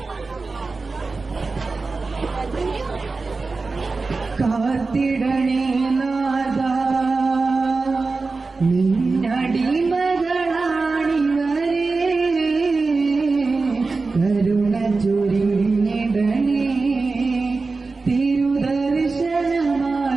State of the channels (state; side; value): quieter; left; 3.9 dB